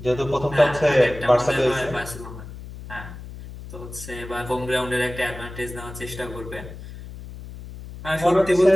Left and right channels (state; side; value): noise; left; hum, 13 dB below the sound